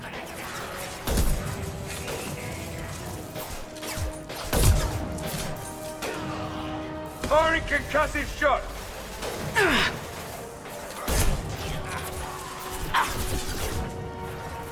Firing concussive shot!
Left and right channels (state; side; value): identical; both; correlation 1.00